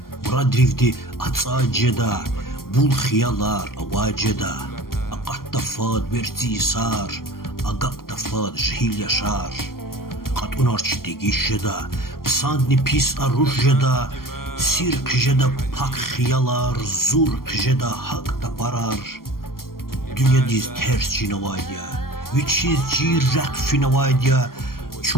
Muradrivdi atsaceda, bul xiyalar avaceda. Aqatta fad verti isar, aqaqta fad jhil yaşar. Qat unarçı degişeda, psandni pis arujeda. Sir kıjeda pak xiyalar, zur kıjeda hak da parar. Dünya diz ters cinavaydiya, viçiz cirrak finavaydiya.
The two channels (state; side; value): late; right; 0.92 ms